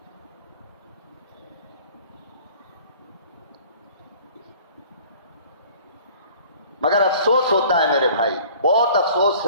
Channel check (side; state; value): both; inverted; correlation -0.49